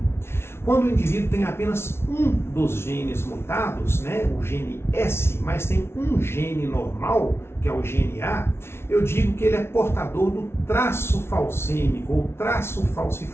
Quando o indivíduo tem apenas um dos genes mutados, né, o gene S, mas tem um gene normal, que é o gene A, eu digo que ele é portador do traço falcêmico ou traço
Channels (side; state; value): right; late; 0.12 ms